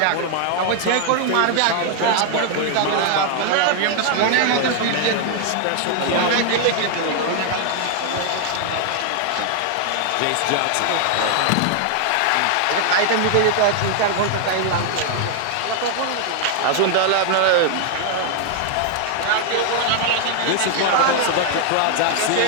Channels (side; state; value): both; different; correlation 0.00